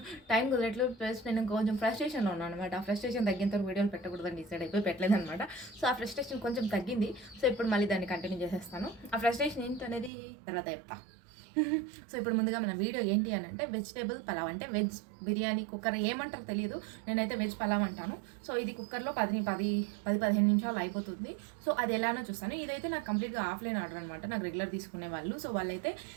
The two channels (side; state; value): left; drops out; at 10.1 s